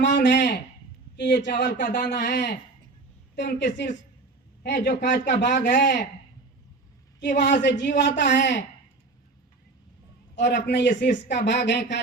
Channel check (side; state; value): left; quieter; 3.5 dB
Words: है कि ये चावल का दाना है तो उनके शीर्ष है जो कांच का भाग है कि वहां से जीव आता है, और अपने ये शीर्ष का भाग है